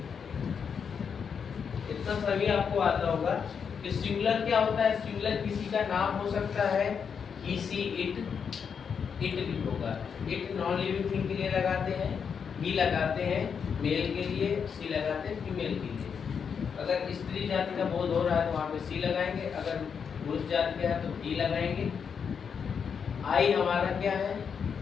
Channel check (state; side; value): quieter; right; 6.7 dB